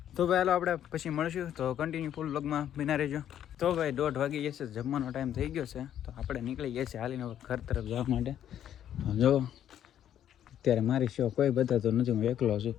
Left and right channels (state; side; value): quieter; right; 10.5 dB